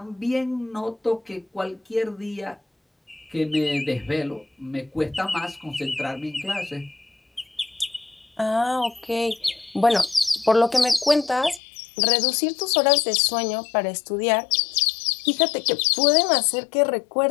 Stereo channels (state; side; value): drops out; right; at 11.6 s